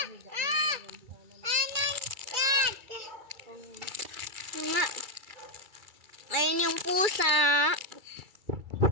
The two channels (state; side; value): late; left; 2.3 ms